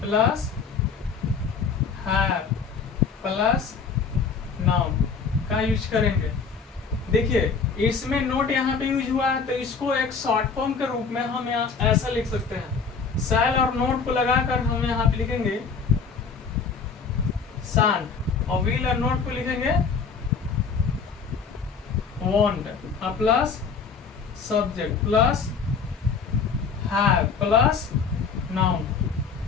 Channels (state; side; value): quieter; right; 5.5 dB